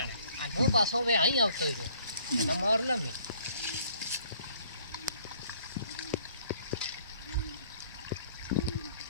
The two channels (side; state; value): both; inverted; correlation -0.59